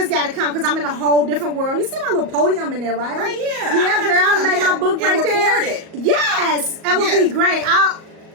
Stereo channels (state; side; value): late; left; 37 ms